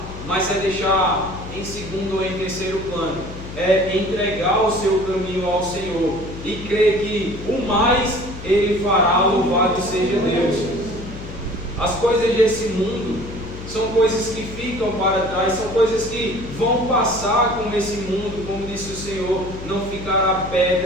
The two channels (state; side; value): noise; left; hum, 12 dB below the sound